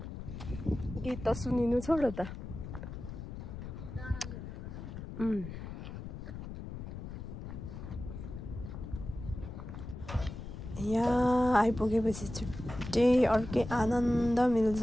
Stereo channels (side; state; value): left; noise; rumble, 9 dB below the sound